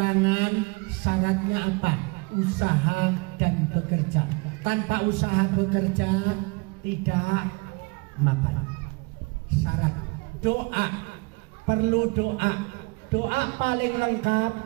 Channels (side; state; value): left; quieter; 27.7 dB